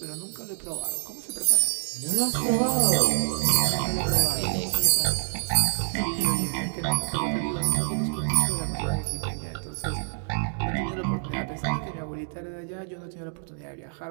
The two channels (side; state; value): left; silent; digital silence